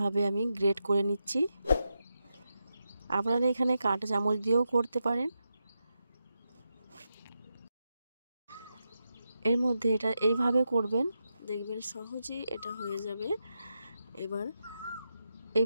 আমি গ্রেট করে নিচ্ছি। আপনারা এখানে কাঁটা চামচ দিয়েও করতে পারেন। এর মধ্যে এটা এইভাবে করবেন, দেখবেন সহজেই এটা হয়ে যাবে। এবার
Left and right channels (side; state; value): both; inverted; correlation -0.87